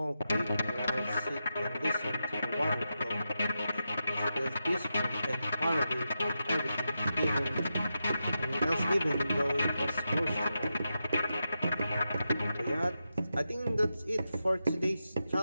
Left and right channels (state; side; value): inverted; both; correlation -0.88